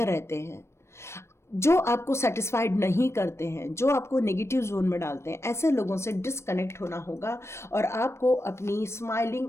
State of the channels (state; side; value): late; right; 0.13 ms